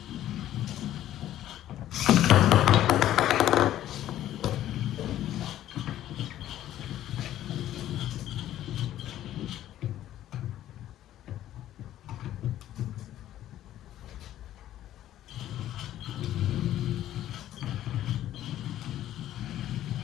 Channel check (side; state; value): right; quieter; 12.7 dB